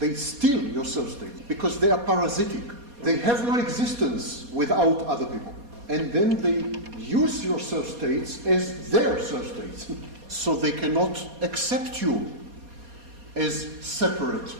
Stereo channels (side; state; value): left; late; 4.2 ms